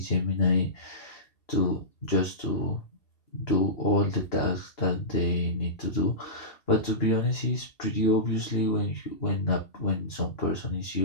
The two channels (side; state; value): right; late; 2.7 ms